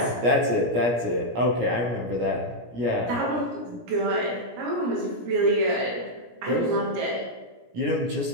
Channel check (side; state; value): left; late; 17 ms